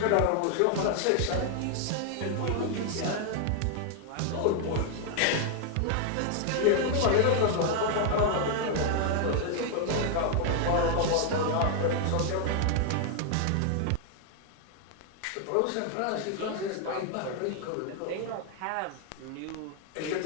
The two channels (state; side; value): different; both; correlation 0.00